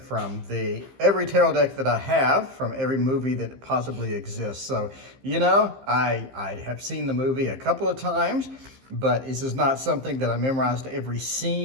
every tarot deck that I have, from every movie that possibly exists. So, you know, I have seen the movie a couple of times, but this is not something that I memorized every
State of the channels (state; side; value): late; left; 15 ms